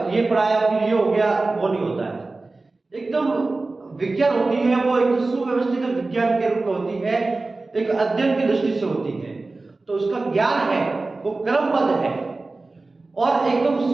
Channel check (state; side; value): quieter; left; 3.4 dB